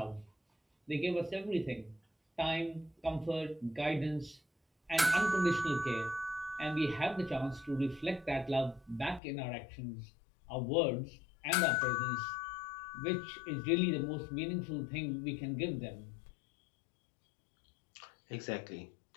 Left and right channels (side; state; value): right; drops out; at 9.2 s